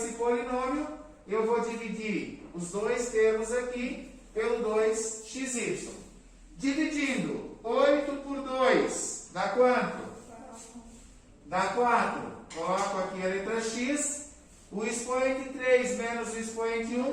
polinômio, eu vou dividir os dois termos aqui pelo 2xy. Dividindo 8 por 2, dá quanto? Dá 4. Coloco aqui a letra x. O expoente 3 menos o expoente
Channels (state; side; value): identical; both; correlation 1.00